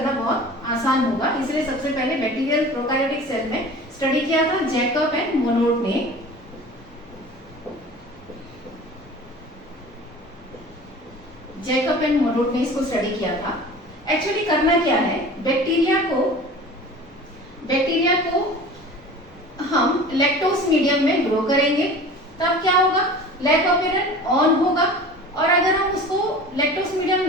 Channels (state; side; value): normal; both; correlation 0.40